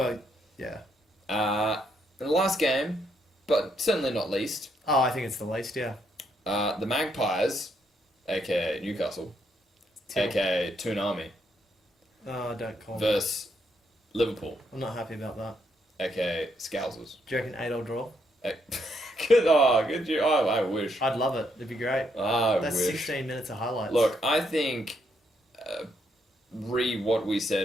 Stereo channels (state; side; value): normal; both; correlation 0.75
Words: yeah. The last game, but certainly not least, Oh, I think it's the least, yeah. the Magpies, aka Newcastle, Till. aka Toonami, Oh, don't call me. versus Liverpool, I'm not happy about that. aka Scousers. Do you reckon 8-all draw? Good you. Oh, I wish. I'd love it. It'd be great. I That's wish. 16 minutes of highlights. Look, I think what we